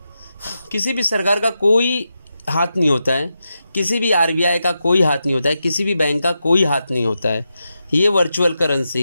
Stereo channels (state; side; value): inverted; both; correlation -0.88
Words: किसी भी सरकार का कोई हाथ नहीं होता है, किसी भी आरबीआई का कोई हाथ नहीं होता है, किसी भी बैंक का कोई हाथ नहीं होता है। ये virtual